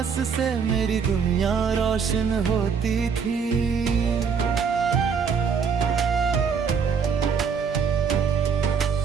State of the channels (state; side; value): quieter; left; 6.3 dB